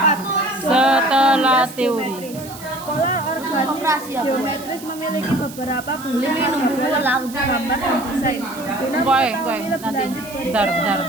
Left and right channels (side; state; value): right; noise; hiss, 16 dB below the sound